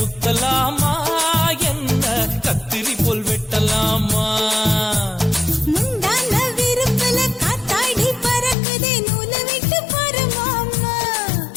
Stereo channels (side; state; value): right; drops out; at 8.6 s